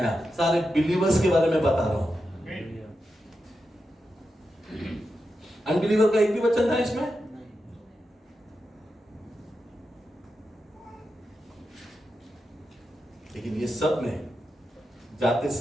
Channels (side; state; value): both; normal; correlation 0.88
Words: सारे बिलीवर्स के बारे में बता रहा हूं। अनबिलीवर का एक भी वचन था इसमें? लेकिन ये सब में जाते